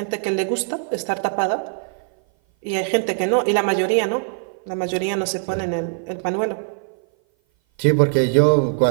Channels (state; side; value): silent; left; 57 dB below the other